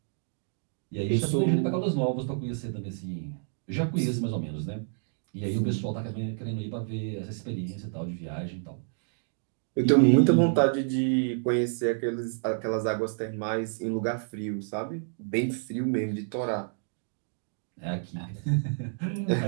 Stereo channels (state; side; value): silent; left; digital silence